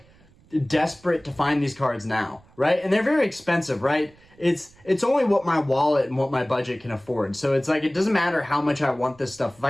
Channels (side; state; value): right; noise; rumble, 29 dB below the sound